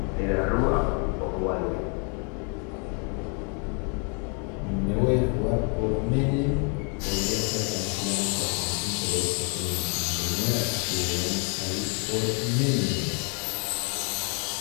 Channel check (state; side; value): quieter; right; 37.5 dB